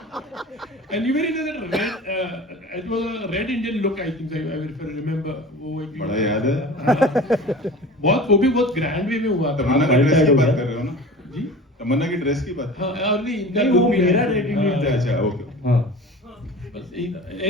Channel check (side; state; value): both; normal; correlation 0.38